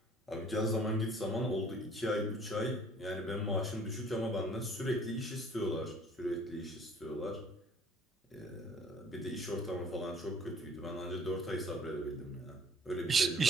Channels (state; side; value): normal; both; correlation 0.54